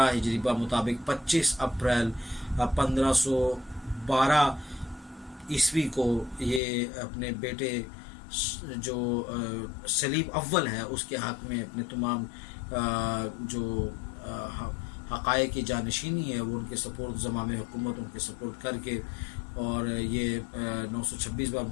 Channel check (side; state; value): right; drops out; at 6.6 s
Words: ہجری مطابق 25 اپریل 1512 عیسوی کو یہ اپنے بیٹے جو سلیم اول ہے اس کے حق میں اپنے تمام جو حقائق کی جانشینی ہے وہ ان کے سپورٹ, زمام حکومت ان کے سپورٹ کر کے, اور یہ 926